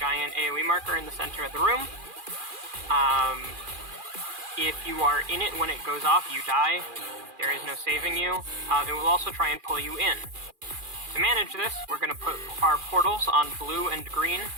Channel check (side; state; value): left; late; 2.4 ms